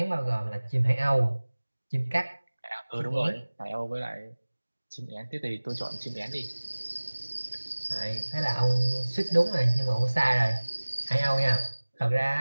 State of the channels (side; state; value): both; inverted; correlation -1.00